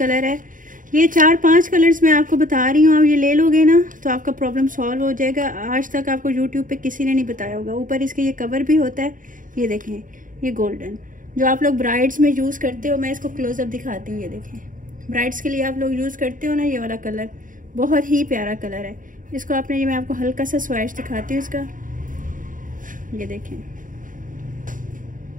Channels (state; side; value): late; left; 0.39 ms